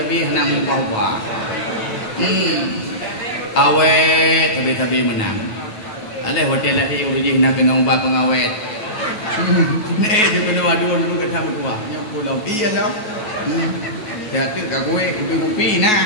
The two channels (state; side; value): late; right; 9.3 ms